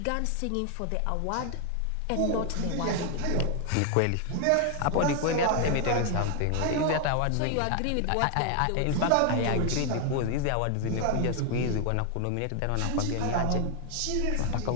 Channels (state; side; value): different; both; correlation 0.00